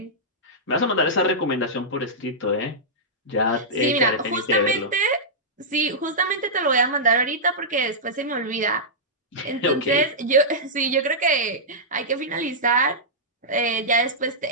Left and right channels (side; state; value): both; normal; correlation -0.12